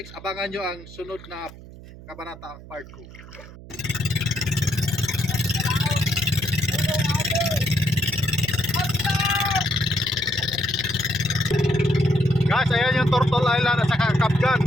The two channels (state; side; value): noise; right; hum, 17 dB below the sound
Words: abangan nyo ang sunod na kabanata part 2. Guys, ayan yung Turtle Island at saka Kapgan.